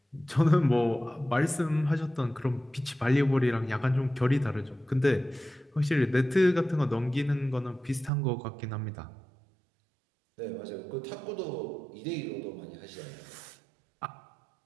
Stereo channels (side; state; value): left; drops out; at 8.1 s